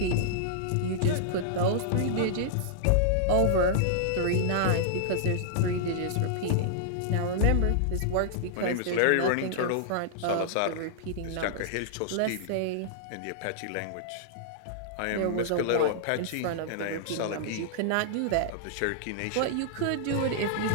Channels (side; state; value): both; different; correlation -0.01